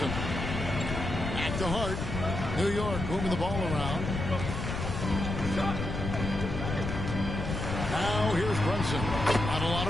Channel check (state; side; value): noise; left; rumble, 4 dB below the sound